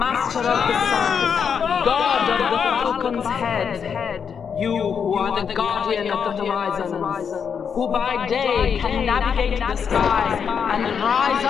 of the Sun, God of the falcon's head, you who are the guardian of the horizons, who by day can navigate the sky and rise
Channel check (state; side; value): quieter; right; 6.9 dB